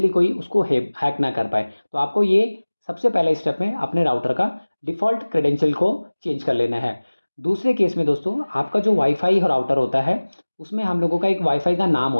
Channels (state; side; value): inverted; both; correlation -1.00